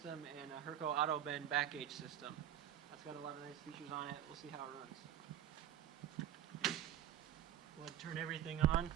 and a Herco auto bend back gauge system. That's got a lot of nice features on it. We'll see how it runs. We'll turn everything on.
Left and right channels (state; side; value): quieter; left; 11.0 dB